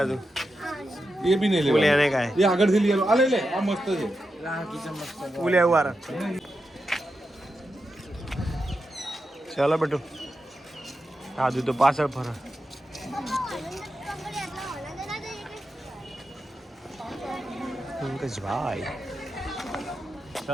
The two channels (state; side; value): normal; both; correlation 0.88